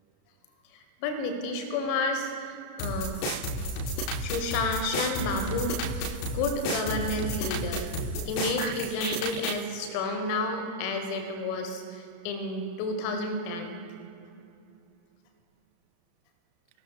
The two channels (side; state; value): right; late; 35 ms